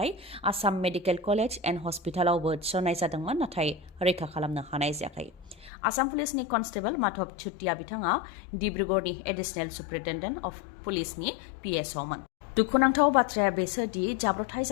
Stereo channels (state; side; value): drops out; right; at 5.7 s